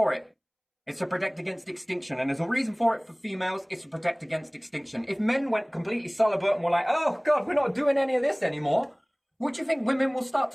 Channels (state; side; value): identical; both; correlation 1.00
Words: it. It's to protect against extinction. And there's a reason for it for females. It's to protect against extinction. If men went completely celibate and were like, oh God, we're not doing any of this anymore, what do you think women will start